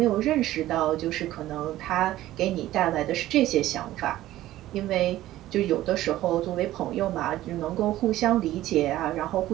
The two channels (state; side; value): quieter; left; 14.9 dB